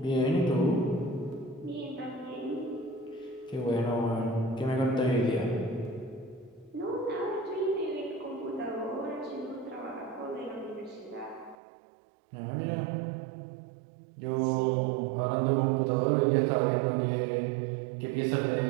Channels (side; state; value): left; drops out; at 11.6 s